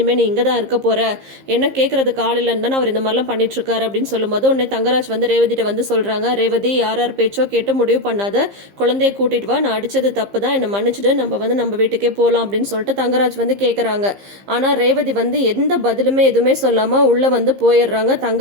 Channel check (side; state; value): left; late; 15 ms